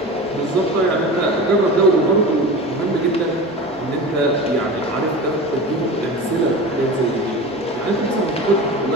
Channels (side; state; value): both; normal; correlation 0.31